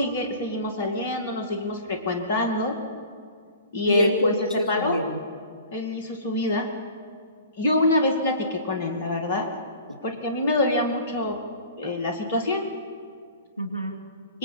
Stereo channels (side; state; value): both; inverted; correlation -0.44